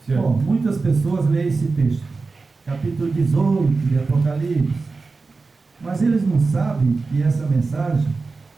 Bom, muitas pessoas leem esse texto, capítulo 18 de Apocalipse, mas eles não sabem que essa mensagem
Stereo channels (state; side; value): quieter; left; 4.0 dB